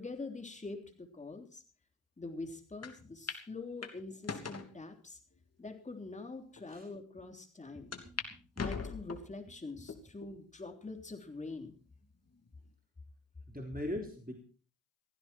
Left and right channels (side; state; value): right; quieter; 3.1 dB